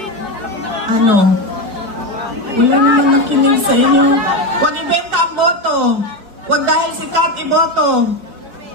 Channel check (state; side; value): late; left; 5.1 ms